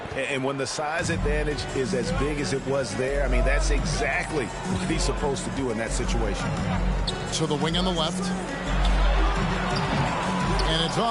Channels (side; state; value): both; identical; correlation 1.00